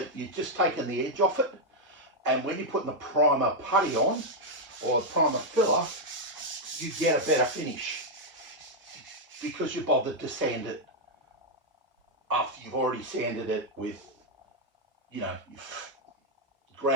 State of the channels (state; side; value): late; left; 1.0 ms